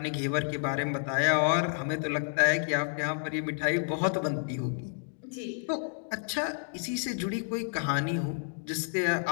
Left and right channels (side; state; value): right; silent; digital silence